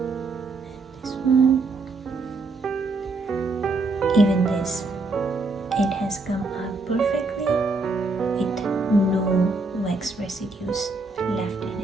this one, even this it has come out perfectly with no wax residues left in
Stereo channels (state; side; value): quieter; left; 3.5 dB